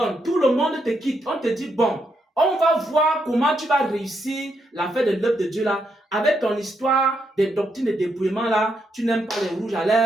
Tout le monde te quitte. On te dit, bon, on va voir comment tu vas réussir l'affaire de l'œuvre de Dieu là. Avec ton histoire des doctrines de dépouillement là, tu n'aimes pas les rouges à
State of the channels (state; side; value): normal; both; correlation 0.79